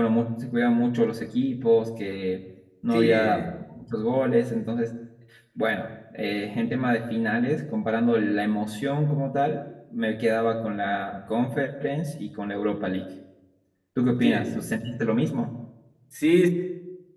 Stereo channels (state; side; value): identical; both; correlation 1.00